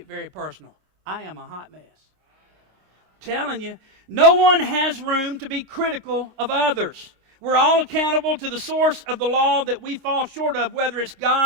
very personal. I am a hot mess. Telling you, no one has room to be critical of others. We're all accountable to the source of the law that we fall short of, whether it's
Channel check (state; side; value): late; left; 26 ms